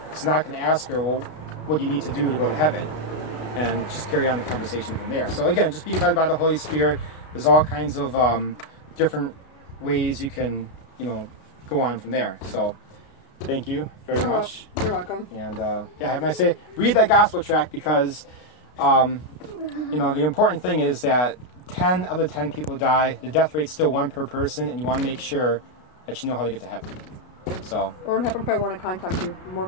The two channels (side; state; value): right; late; 33 ms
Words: So now I can ask her, well, what do you need to do to go to heaven? And just carry on the conversation from there. So again, just be led by the Holy Spirit. There's all kinds of different ways you can, you know, go on from there. So thank you very much. You're welcome. And yeah, have a nice day. Read that gospel tract, because you know, the important thing is that 10 out of 10 people die. The death rate's still 1 per person, and you want to make sure that you know how to get to heaven. So what happens if I want to contact you? More